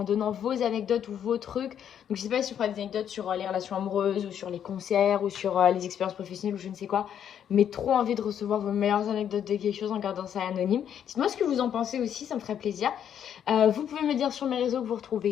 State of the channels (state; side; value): quieter; right; 9.2 dB